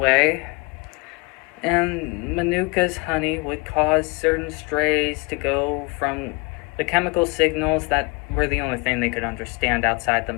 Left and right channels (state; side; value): quieter; right; 28.3 dB